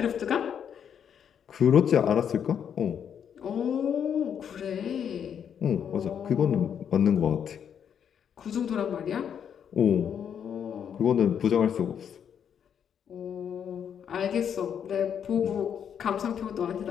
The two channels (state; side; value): quieter; right; 8.2 dB